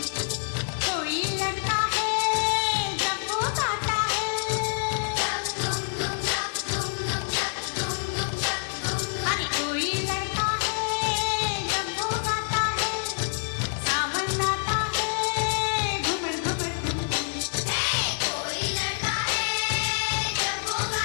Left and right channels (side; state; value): right; silent; digital silence